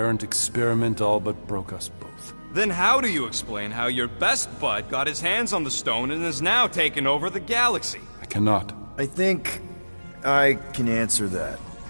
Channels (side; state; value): both; inverted; correlation -1.00